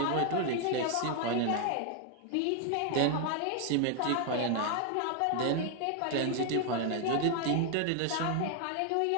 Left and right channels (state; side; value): different; both; correlation 0.00